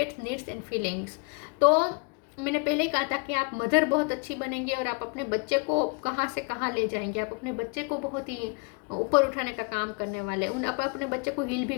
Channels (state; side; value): quieter; right; 33.6 dB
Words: needs and feelings. तो मैंने पहले ही कहा था कि आप मदर बहुत अच्छी बनेंगे और आप अपने बच्चे को कहाँ से कहाँ ले जाएंगे। आप अपने बच्चे को बहुत ही ऊपर उठाने का काम करने वाले, आप अपने बच्चे को हील भी